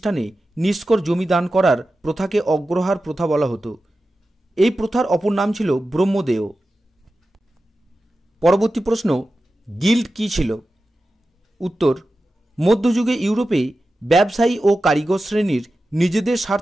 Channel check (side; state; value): both; normal; correlation 0.93